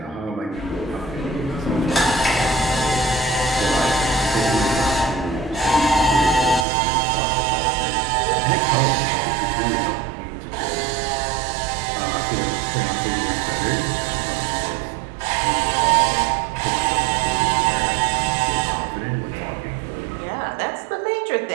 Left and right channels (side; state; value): left; drops out; at 6.7 s